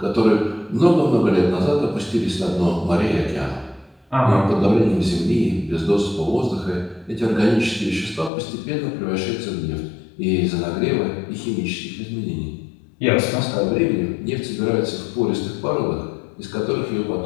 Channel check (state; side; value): drops out; right; at 8.3 s